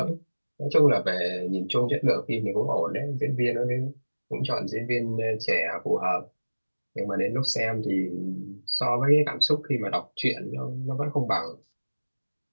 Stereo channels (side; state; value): both; inverted; correlation -1.00